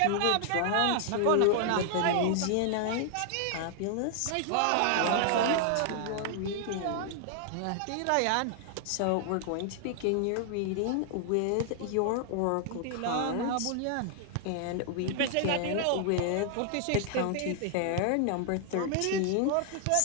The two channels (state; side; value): different; both; correlation 0.00